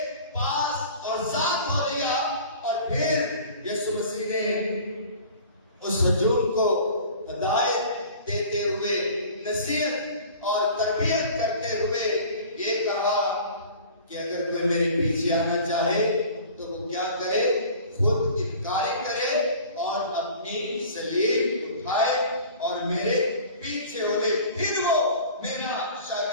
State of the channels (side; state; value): both; inverted; correlation -0.44